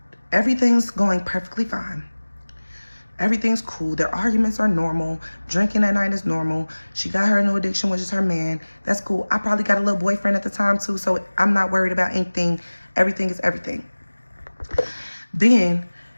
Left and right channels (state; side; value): inverted; both; correlation -1.00